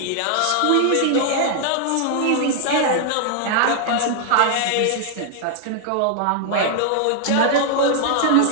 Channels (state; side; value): different; both; correlation 0.00